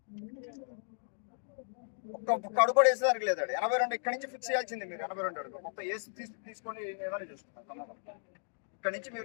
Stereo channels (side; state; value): right; silent; digital silence